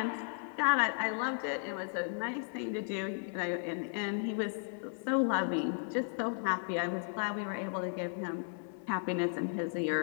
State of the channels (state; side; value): silent; right; 54 dB below the other